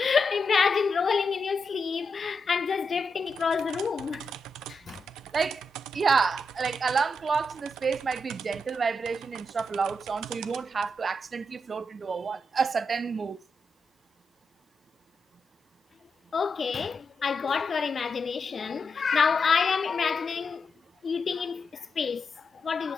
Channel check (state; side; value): normal; both; correlation 0.84